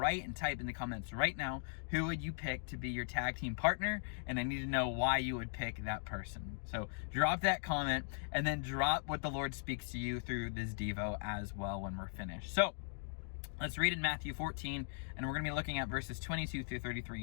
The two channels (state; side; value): silent; right; digital silence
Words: and type in the comments right now, who would you pick to be your tag team partner? And I need to know why you would pick that person. So drop that comment and then drop what the Lord speaks to you through this Devo as well when we're finished. So let's read in Matthew 14, and we're going to be looking at verses 22 through